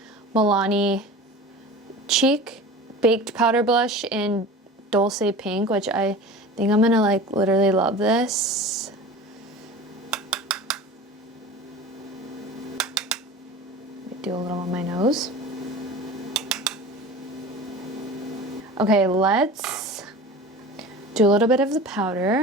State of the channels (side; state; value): both; normal; correlation 0.36